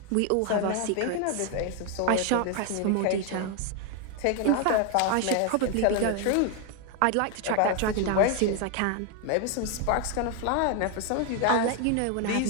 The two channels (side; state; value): both; different; correlation 0.01